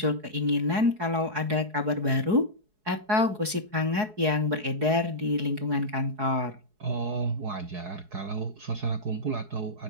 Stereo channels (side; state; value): left; late; 4.7 ms